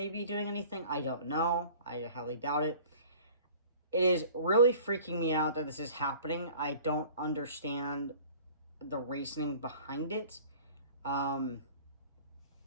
be doing anything. I don't know. I highly doubt it. It is really freaking me out that this is happening. I don't understand the reasoning behind it. And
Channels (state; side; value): inverted; both; correlation -0.46